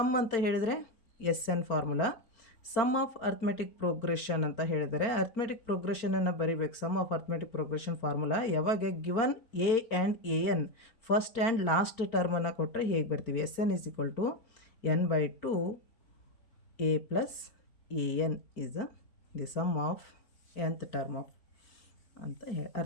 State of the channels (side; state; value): right; late; 4.4 ms